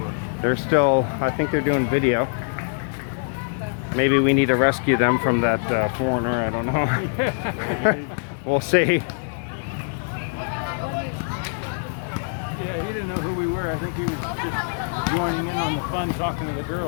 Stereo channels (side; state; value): right; silent; digital silence